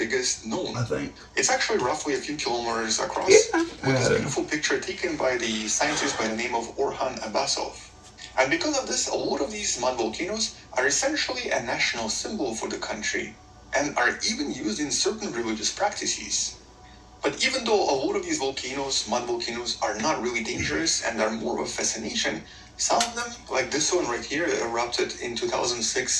known. I think. It's actually roughly a few kilometers across, with this beautiful picture taken by the scientist by the name of Orhan Abbasov. And because of this, a lot of these mud volcanoes are essentially a national symbol for the country, and are even used in certain religious practices. But even though a lot of these volcanoes, mud volcanoes, are not really dangerous and are more of a fascination, some of them, like this one right here, erupted in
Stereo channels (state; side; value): identical; both; correlation 1.00